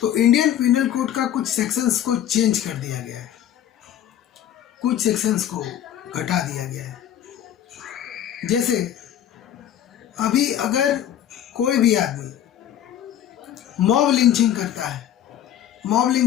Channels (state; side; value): quieter; right; 10.8 dB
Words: इंडियन पीनल कोड का कुछ सेक्शंस को चेंज कर दिया गया है, कुछ सेक्शंस को घटा दिया गया है। जैसे अभी अगर कोई भी आदमी मॉब लिंचिंग करता है, मॉब